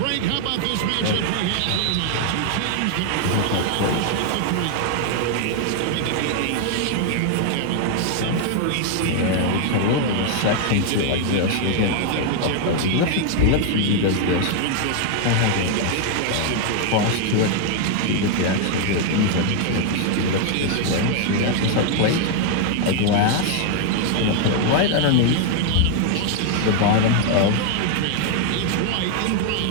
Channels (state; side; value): different; both; correlation 0.00